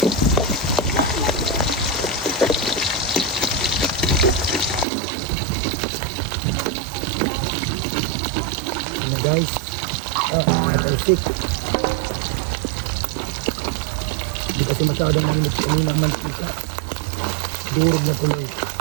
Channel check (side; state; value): left; drops out; at 4.9 s